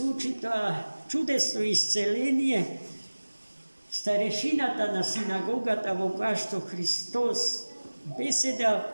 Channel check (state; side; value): inverted; both; correlation -1.00